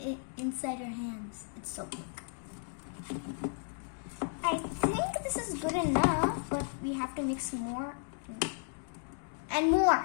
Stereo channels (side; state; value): right; silent; 55 dB below the other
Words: inside your hands, it's so quick. I think this is good enough, but we have to mix more and